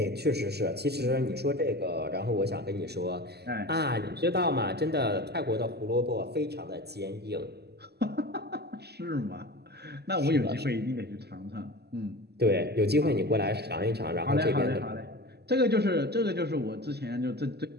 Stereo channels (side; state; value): left; late; 0.47 ms